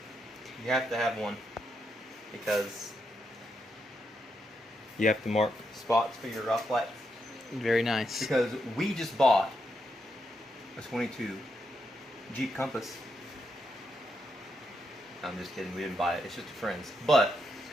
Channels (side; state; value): both; normal; correlation 0.81